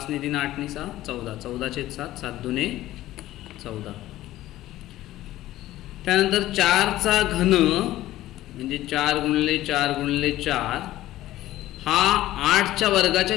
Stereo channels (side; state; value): right; quieter; 15.1 dB